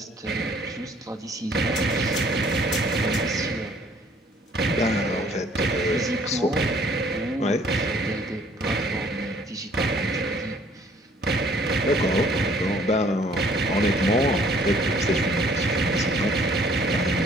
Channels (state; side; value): normal; both; correlation 0.59